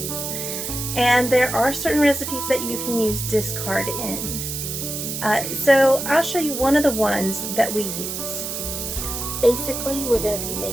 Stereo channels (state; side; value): noise; right; hiss, 5 dB below the sound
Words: And there are certain recipes that you can use discard in. So I'll show you one of the ones that we use. Basically, we're going to be